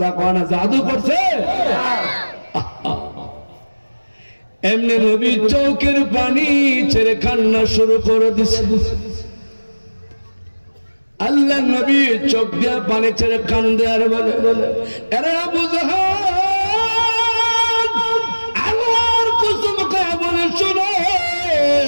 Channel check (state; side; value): inverted; both; correlation -1.00